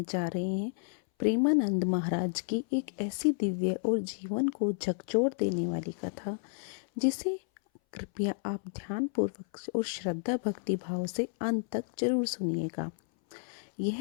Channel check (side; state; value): right; silent; 57 dB below the other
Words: जा रहे हैं प्रेमानंद महाराज की एक ऐसी दिव्य और जीवन को झकझोर देने वाली कथा जिसे कृपया आप ध्यानपूर्वक और श्रद्धा भक्ति भाव से अंत तक जरूर सुनिएगा।